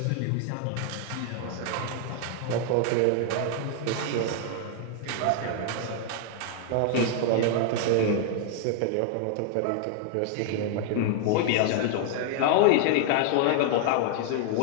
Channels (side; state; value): both; different; correlation 0.00